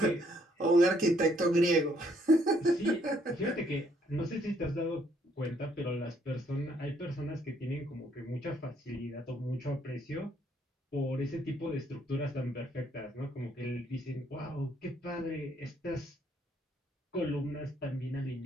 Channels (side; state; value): both; normal; correlation 0.68